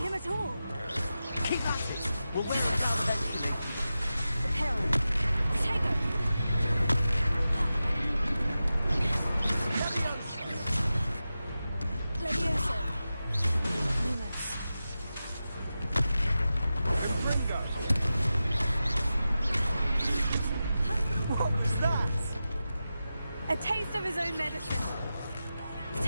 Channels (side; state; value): both; inverted; correlation -0.93